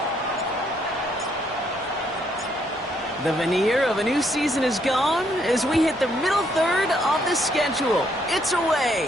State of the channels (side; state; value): both; normal; correlation 0.71